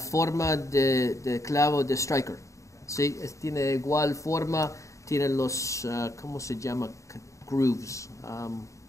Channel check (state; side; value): late; right; 0.15 ms